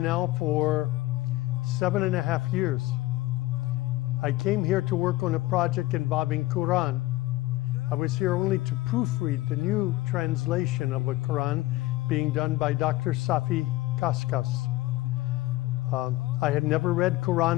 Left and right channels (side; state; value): right; quieter; 18.4 dB